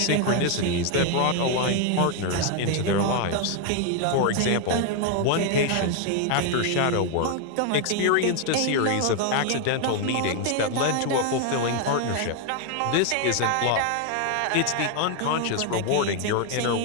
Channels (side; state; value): both; different; correlation 0.01